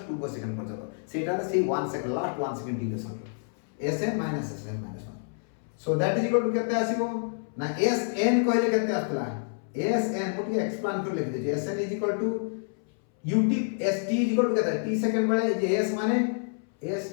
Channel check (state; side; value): silent; right; 59 dB below the other